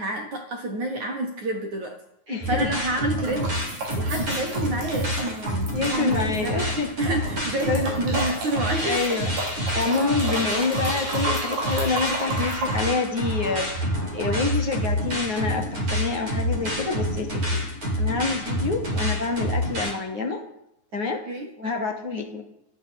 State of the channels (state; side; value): late; left; 9.5 ms